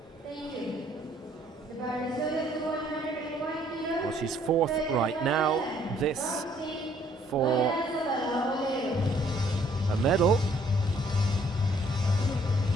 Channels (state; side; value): normal; both; correlation 0.63